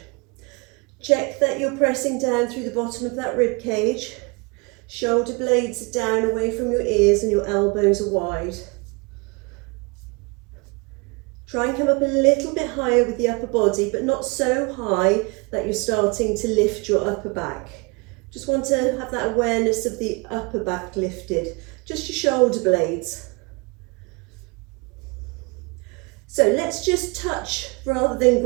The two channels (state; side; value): quieter; left; 29.5 dB